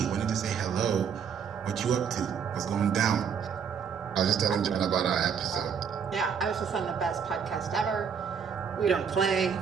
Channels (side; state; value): left; quieter; 7.0 dB